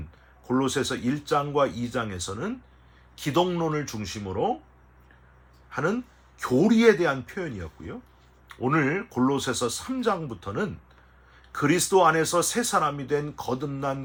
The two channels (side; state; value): both; identical; correlation 1.00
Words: 골로새서 1장과 2장에서는 기독론을 중심으로 하는 교리에 대한 표현이었고요. 오늘 골로새서 3장부터는 그리스도 안에서 새 사람이 된